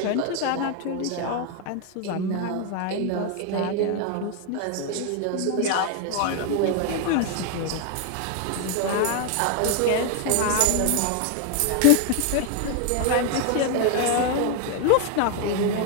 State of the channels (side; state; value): both; different; correlation 0.01